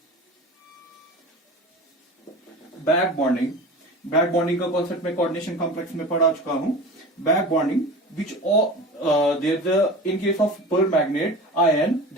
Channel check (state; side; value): normal; both; correlation 0.34